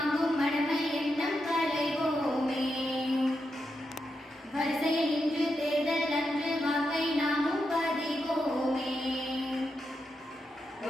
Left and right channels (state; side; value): normal; both; correlation 0.85